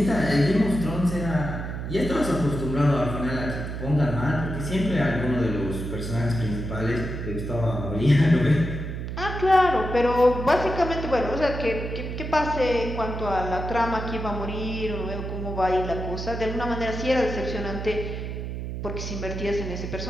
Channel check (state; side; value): noise; right; hum, 5 dB below the sound